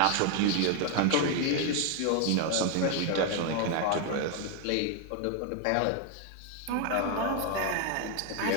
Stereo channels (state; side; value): different; both; correlation 0.01